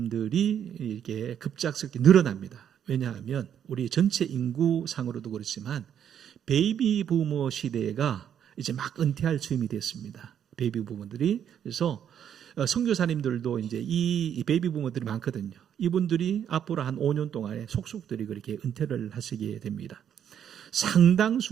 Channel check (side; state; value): left; quieter; 9.1 dB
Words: 이렇게 급작스럽게 늘어납니다. 왜냐하면 우리 전체 인구상으로도 그렇지만 베이비 부머 시대가 이제 막 은퇴할 즈음이 됐습니다. 베이비 부머들이. 그래서 선교사님들도 이제 이 베이비 부머들이 많거든요. 이분들이 앞으로 한 5년 동안에 속속들이 그렇게 은퇴를 하시게 됩니다.